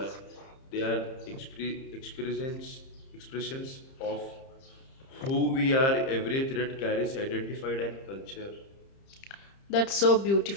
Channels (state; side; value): late; right; 30 ms